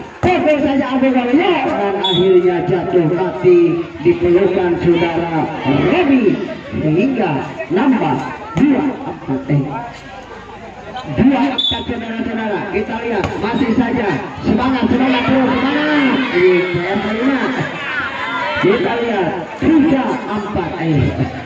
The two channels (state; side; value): identical; both; correlation 1.00